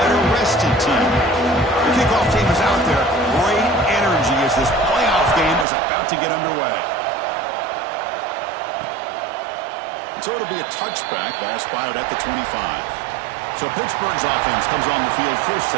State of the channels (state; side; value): drops out; left; at 5.7 s